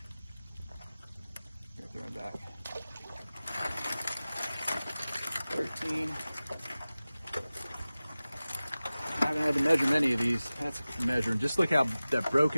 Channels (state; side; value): inverted; both; correlation -0.97